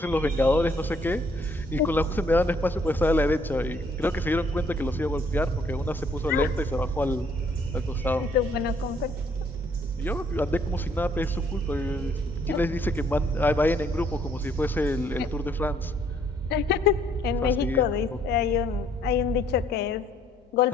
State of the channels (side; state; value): both; normal; correlation 0.65